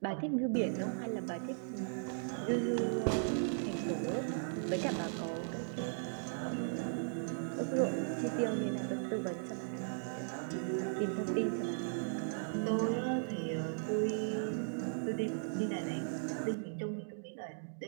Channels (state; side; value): silent; left; digital silence